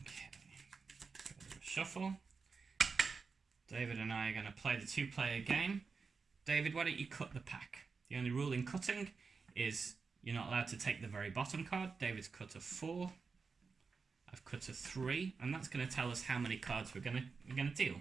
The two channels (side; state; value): left; quieter; 4.9 dB